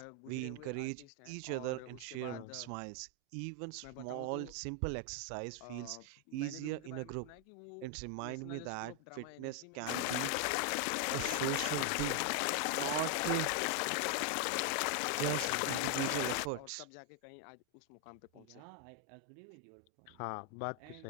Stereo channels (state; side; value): different; both; correlation 0.00